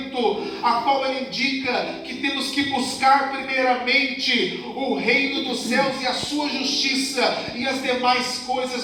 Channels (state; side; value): identical; both; correlation 1.00